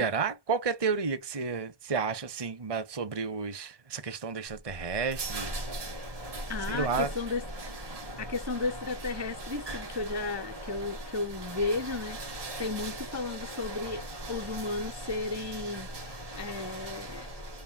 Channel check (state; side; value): late; left; 1.2 ms